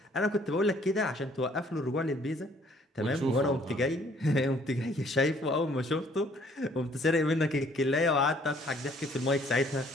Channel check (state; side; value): normal; both; correlation 0.61